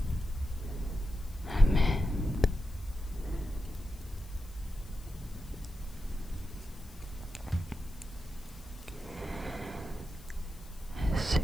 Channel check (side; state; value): left; noise; hiss, 24 dB below the sound